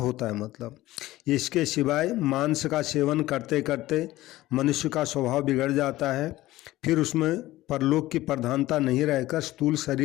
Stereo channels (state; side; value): quieter; right; 16.7 dB